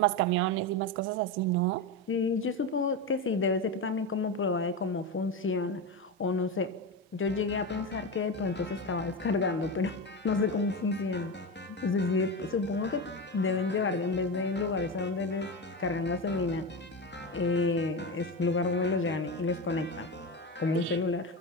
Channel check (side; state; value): both; normal; correlation 0.18